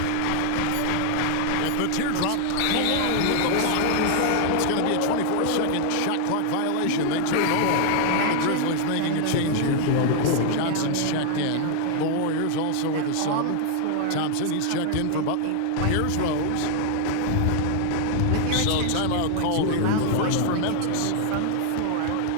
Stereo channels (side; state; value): both; different; correlation 0.00